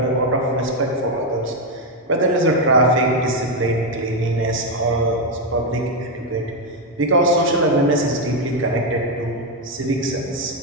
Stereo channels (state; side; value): normal; both; correlation 0.05